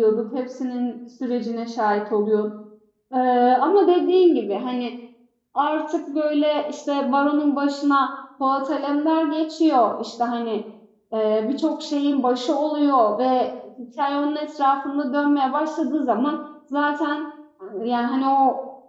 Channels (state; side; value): identical; both; correlation 1.00